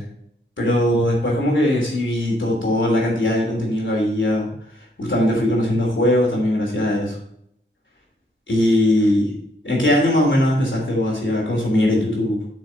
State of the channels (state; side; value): normal; both; correlation 0.70